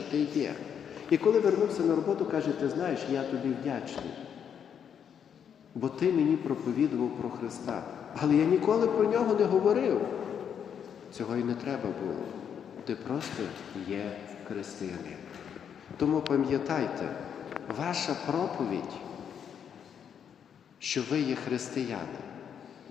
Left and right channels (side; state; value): right; quieter; 8.1 dB